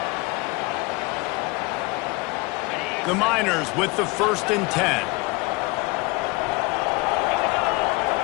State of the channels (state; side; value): quieter; right; 25.6 dB